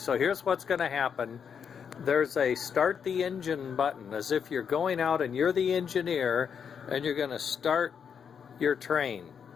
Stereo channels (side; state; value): right; quieter; 7.2 dB